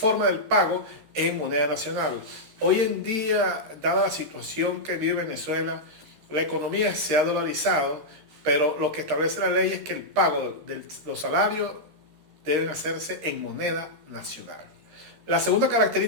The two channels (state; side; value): late; left; 13 ms